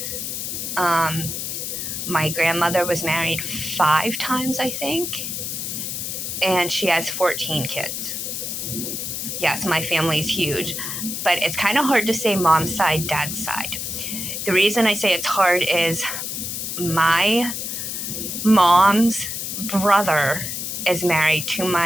my grandmother was married 5 times, I think, and she has 14 kids. Yes, my family's huge, but it's kind of hard to say mom's side, dad's side. The reason I say it's hard is my mom's brother is married to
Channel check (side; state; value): left; noise; hiss, 4 dB below the sound